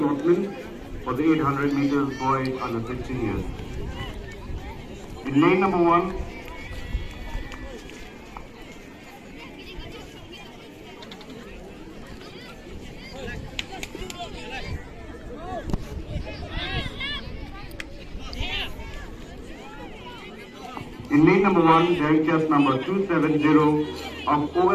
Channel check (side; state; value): both; identical; correlation 1.00